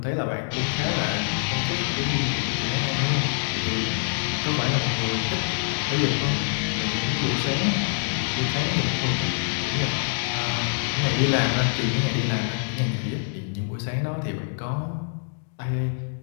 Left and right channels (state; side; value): silent; right; digital silence